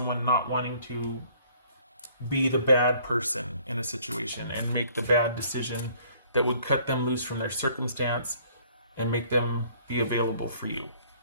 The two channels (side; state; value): both; inverted; correlation -0.59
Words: not wanting to be the bad person in a situation and make the bad decision that would cut them loose from their circumstance and make them be available for you.